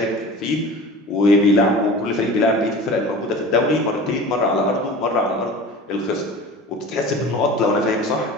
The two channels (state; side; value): normal; both; correlation 0.38